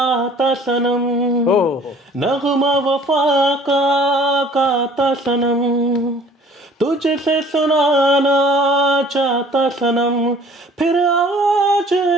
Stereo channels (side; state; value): both; normal; correlation 0.52